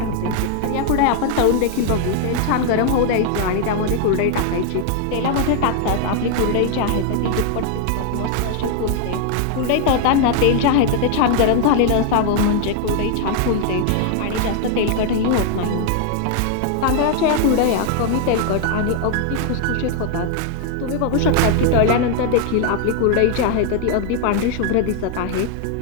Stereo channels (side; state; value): both; different; correlation 0.00